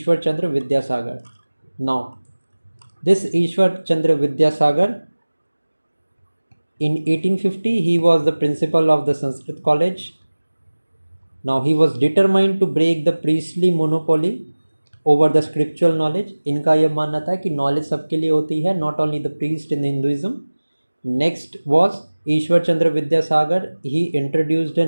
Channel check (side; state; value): both; inverted; correlation -1.00